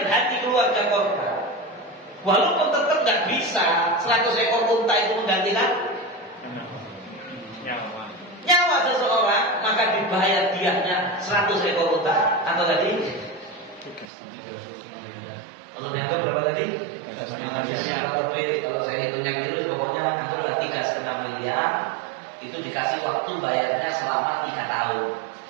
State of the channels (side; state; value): left; drops out; at 14.1 s